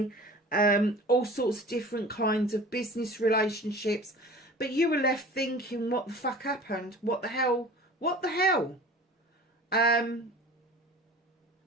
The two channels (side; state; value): both; normal; correlation 0.41